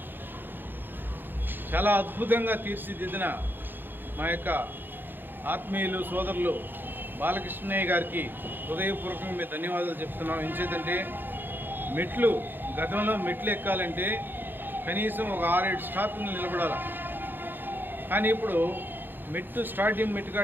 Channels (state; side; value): late; left; 0.096 ms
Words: చాలా అద్భుతంగా తీర్చిదిద్దిన మా యొక్క ఆత్మీయులు సోదరులు బాలకృష్ణయ్య గారికి హృదయపూర్వకంగా మేము ధన్యవాదాలు చెప్తున్నాం. ఎంచేతంటే గతంలో మెట్లు ఎక్కాలంటే కనీసం ఒక 6-7 స్టాప్లు నిలబడాలి. కానీ ఇప్పుడు